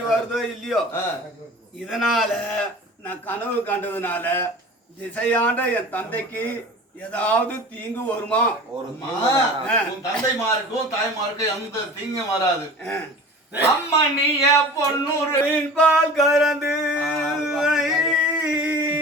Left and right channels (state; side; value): normal; both; correlation 0.38